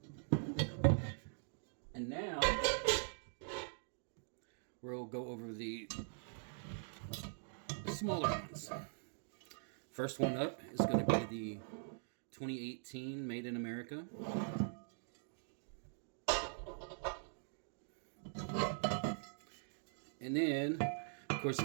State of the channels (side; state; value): left; silent; digital silence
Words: And now we'll go over the smaller ones. First one up is going to be the 2018 Made in America. And then, of course,